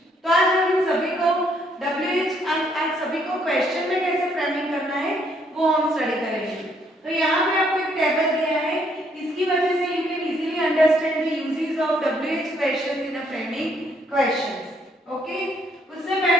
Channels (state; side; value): normal; both; correlation 0.69